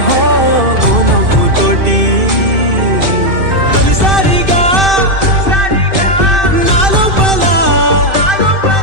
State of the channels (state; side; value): late; left; 2.6 ms